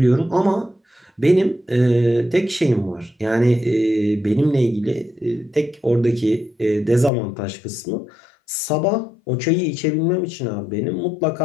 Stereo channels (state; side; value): drops out; right; at 7.1 s